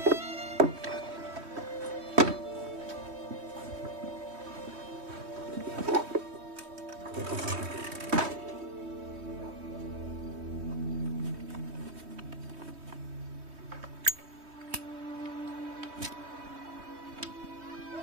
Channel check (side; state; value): left; late; 3.2 ms